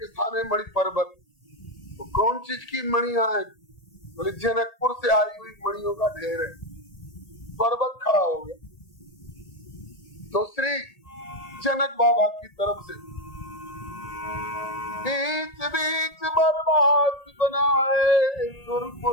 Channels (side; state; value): right; late; 1.8 ms